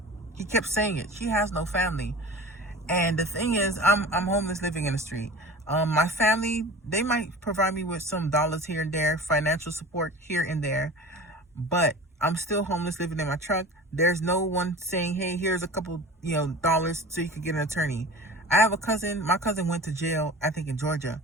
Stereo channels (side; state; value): both; normal; correlation 0.37